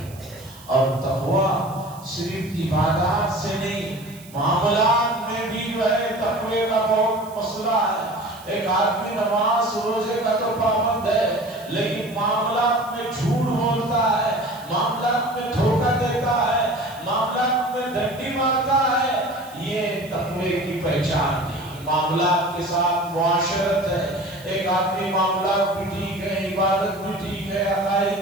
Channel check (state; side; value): noise; right; hiss, 21 dB below the sound